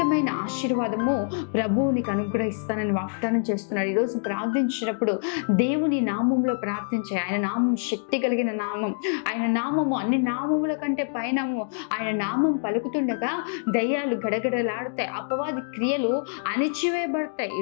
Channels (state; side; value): silent; right; digital silence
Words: ఆశీర్వాదము ప్రభువు నీకు అనుగ్రహిస్తానని వాగ్దానం చేస్తున్నాడు. ఈరోజు ప్రార్థించినప్పుడు దేవుని నామంలో ప్రార్థించే. ఆయన నామం శక్తి కలిగిన నామం. ఆయన నామము అన్ని నామముల కంటే పైనము. ఆయన నామం పలుకుతుండగా దయ్యాలు గడగడలాడుతాయి, అపవాది క్రియలు అణిచివేయబడతాయి.